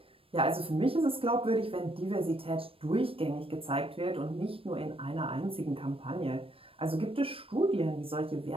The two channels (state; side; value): late; left; 0.27 ms